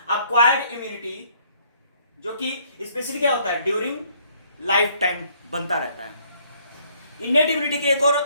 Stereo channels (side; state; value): both; inverted; correlation -0.65